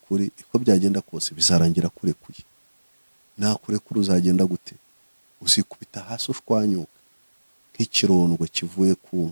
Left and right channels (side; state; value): both; inverted; correlation -1.00